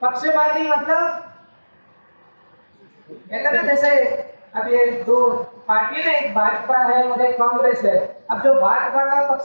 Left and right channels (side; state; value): both; inverted; correlation -1.00